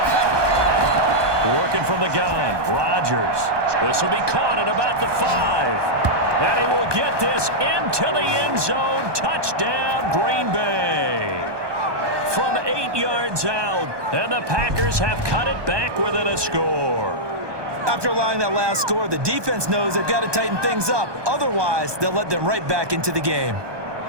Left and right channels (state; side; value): late; left; 1.2 ms